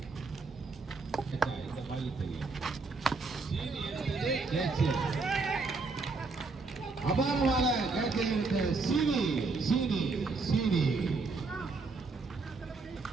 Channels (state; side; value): quieter; left; 4.0 dB